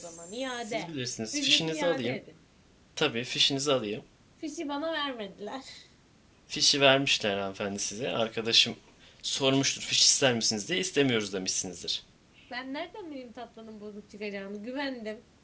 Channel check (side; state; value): both; identical; correlation 1.00